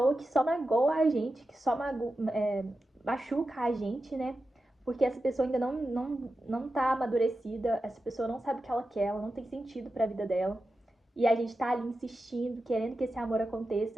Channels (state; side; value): normal; both; correlation 0.91